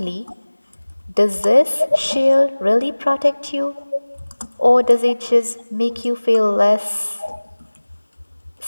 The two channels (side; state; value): both; inverted; correlation -1.00